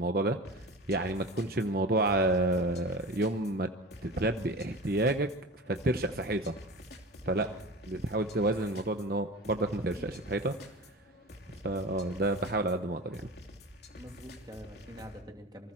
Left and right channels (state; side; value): normal; both; correlation 0.32